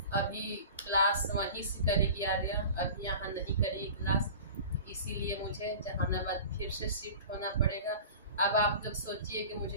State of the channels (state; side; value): inverted; both; correlation -0.38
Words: अभी क्लास वहीं से करेगी आर्या, अभी यहाँ नहीं करेगी क्लास, इसीलिए मुझे जहानाबाद फिर से शिफ्ट होना पड़ेगा। अब आप लोग सोचिए कि